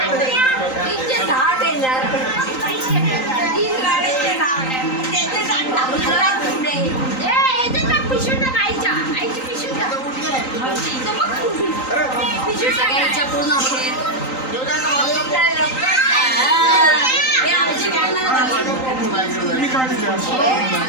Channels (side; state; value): right; late; 3.9 ms